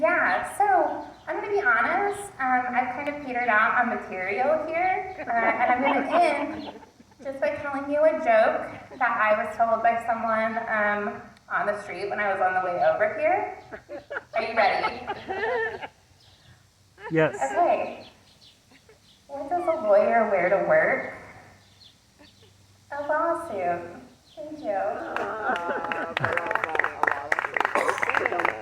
so I'm gonna be honest, I've kind of petered out on material here, and I'm gonna end just by telling you a joke that I was told by someone on the street when I was on the way over here. Are you ready? Yes. Okay. What does a lawyer wear to work? A lawsuit. Thank you.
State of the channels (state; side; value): identical; both; correlation 1.00